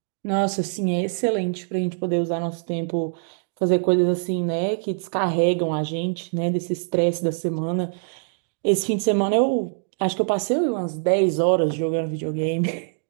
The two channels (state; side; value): silent; left; digital silence